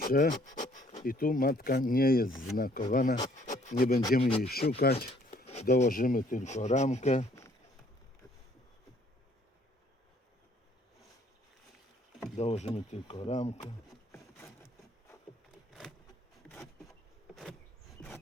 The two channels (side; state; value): both; normal; correlation 0.62